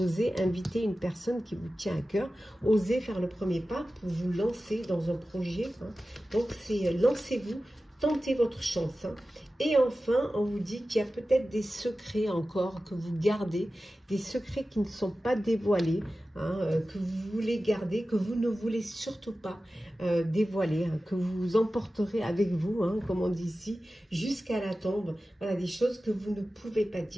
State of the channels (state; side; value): normal; both; correlation 0.95